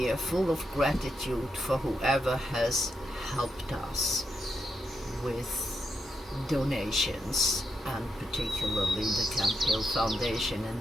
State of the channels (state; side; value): normal; both; correlation 0.83